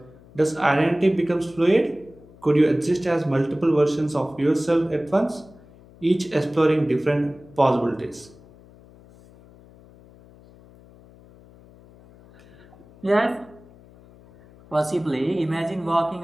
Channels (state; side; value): noise; left; hum, 24 dB below the sound